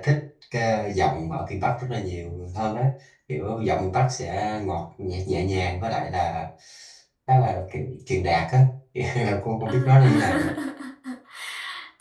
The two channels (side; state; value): both; identical; correlation 1.00